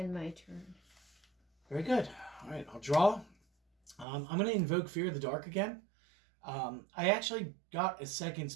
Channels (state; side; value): drops out; left; at 4.0 s